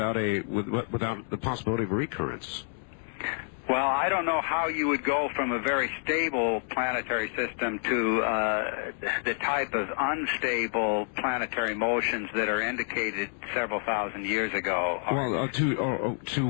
possibility of recurrence. Well, I don't know how you would go from a very stable planetary system to the type of unstable planetary motions that are indicated several thousand years ago. Well, to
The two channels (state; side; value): silent; right; 59 dB below the other